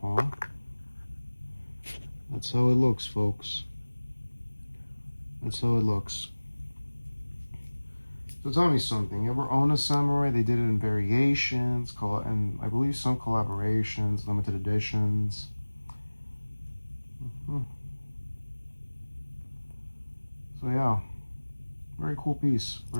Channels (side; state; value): both; inverted; correlation -1.00